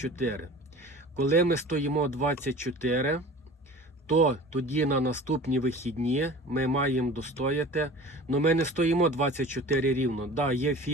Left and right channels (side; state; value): both; normal; correlation 0.40